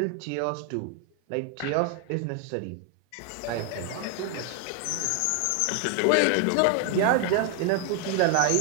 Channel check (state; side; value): different; both; correlation 0.00